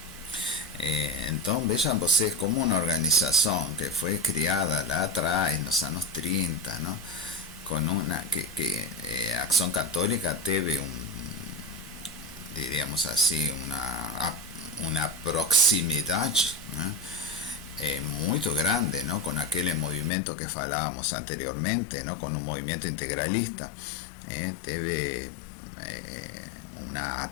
Entonces vean ustedes como una organización que fue creada la atrás en los años 30, ¿no? Con una que Acción Católica tuvo diríamos así, una proximidad, ¿no? Muy grande, ¿no? Con aquel movimiento que hablábamos anteriormente, ¿no? Con un movimiento integralista, tuvo una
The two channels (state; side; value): drops out; right; at 20.1 s